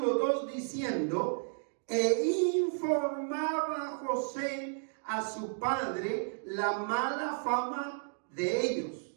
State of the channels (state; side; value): silent; left; digital silence